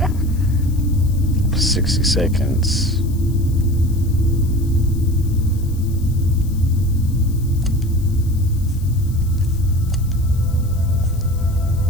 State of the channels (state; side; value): noise; left; hiss, 22 dB below the sound